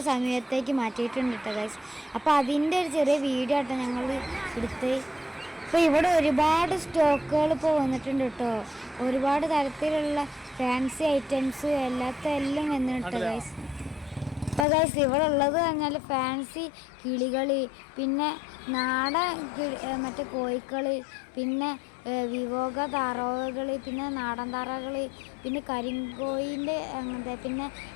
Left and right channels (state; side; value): drops out; right; at 14.7 s